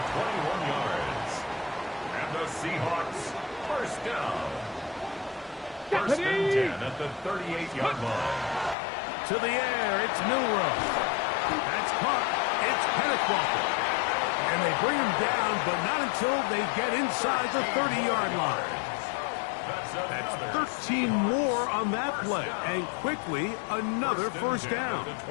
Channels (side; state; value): right; drops out; at 8.8 s